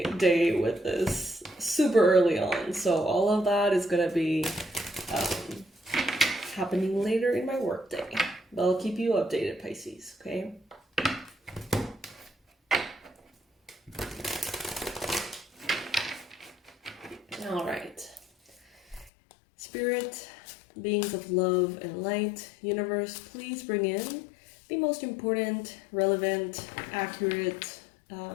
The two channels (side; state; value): right; drops out; at 19.1 s